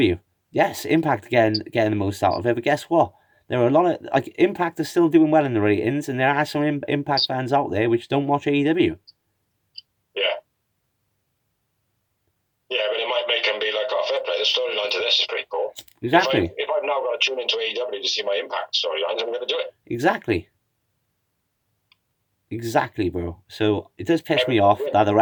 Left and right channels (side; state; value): both; identical; correlation 1.00